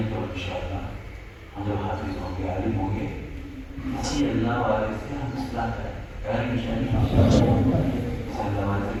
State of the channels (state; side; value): identical; both; correlation 1.00